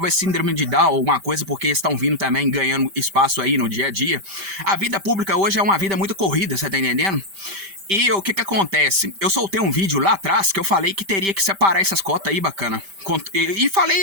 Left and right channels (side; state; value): left; late; 5.1 ms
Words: síndrome de Down ou alguma coisa, porque estão vindo também ganhando espaço aí no dia a dia. A vida pública hoje é uma vida muito corrida, você tá entendendo? E o que acontece? Eu soltei um vídeo lá atrás que eu falei que teria que separar essas cotas aí, bacana. E